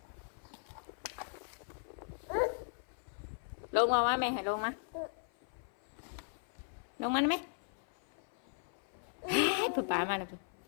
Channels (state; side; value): silent; right; 53 dB below the other